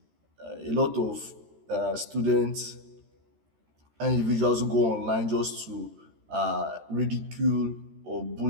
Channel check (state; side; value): late; left; 13 ms